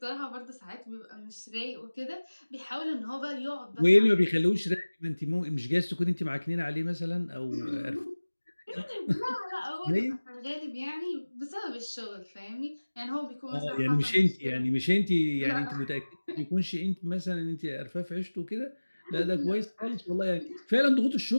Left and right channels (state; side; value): inverted; both; correlation -1.00